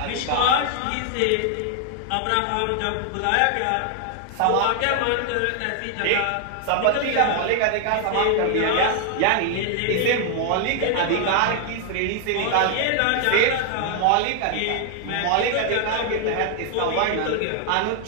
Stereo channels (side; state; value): both; different; correlation 0.00